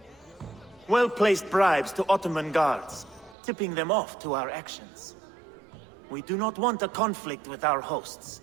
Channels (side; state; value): left; drops out; at 3.4 s